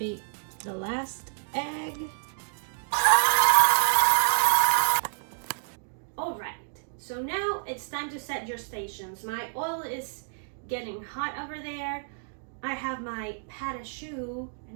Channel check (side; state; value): left; silent; digital silence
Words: the last egg. Alright, so now it's time to set your stations. My oil is getting hot over there. I have my pâte à choux, and